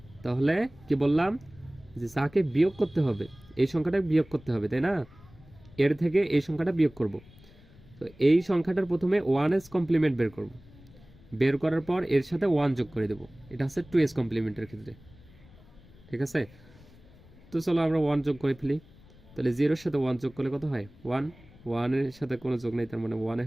তাহলে কি বললাম, যে যাকে বিয়োগ করতে হবে এই সংখ্যাটা বিয়োগ করতে হবে, তাই না? এর থেকে এই সংখ্যাটা বিয়োগ করব। তো এই সংখ্যাটার প্রথমে 1s কমপ্লিমেন্ট বের করব, বের করার পর এর সাথে 1 যোগ করে দেব। এটা হচ্ছে 2s কমপ্লিমেন্টের ক্ষেত্রে, ঠিক আছে? তো চলো আমরা 1 যোগ করে ফেলি। তাহলে 0 এর সাথে 1 যোগ করলে কত হয়? 1, 1 এর সাথে কোনো যোগ নেই, তার মানে 1 এ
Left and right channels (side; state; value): left; noise; rumble, 24 dB below the sound